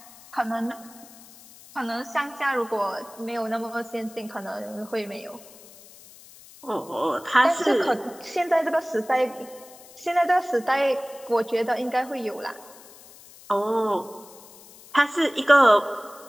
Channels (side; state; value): left; noise; hiss, 21 dB below the sound